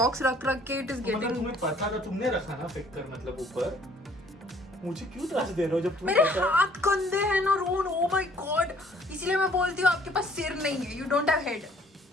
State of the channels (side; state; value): both; normal; correlation 0.59